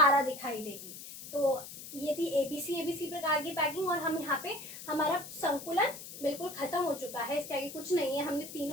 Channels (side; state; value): left; noise; hiss, 12 dB below the sound